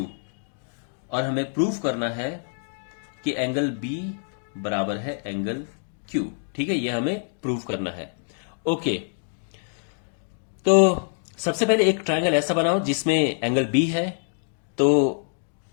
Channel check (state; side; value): silent; right; digital silence